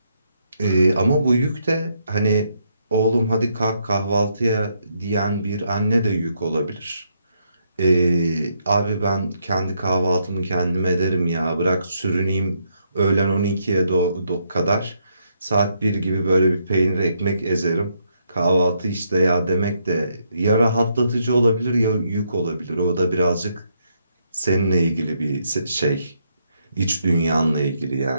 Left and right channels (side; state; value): both; inverted; correlation -0.76